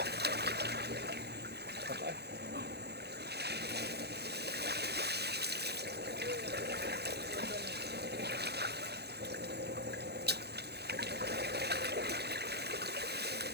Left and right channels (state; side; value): late; left; 0.48 ms